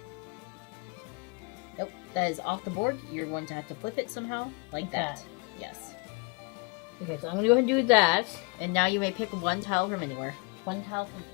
Nope, that is off the board. You're going to have to flip it somehow, like that. Yes. Okay, so I'm gonna go ahead and do that. And now you may pick one tile from anywhere. One tile from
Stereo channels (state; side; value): quieter; right; 31.9 dB